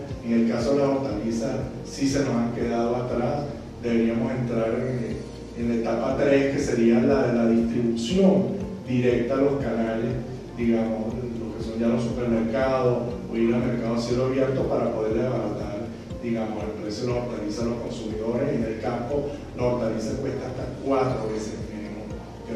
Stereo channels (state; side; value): identical; both; correlation 1.00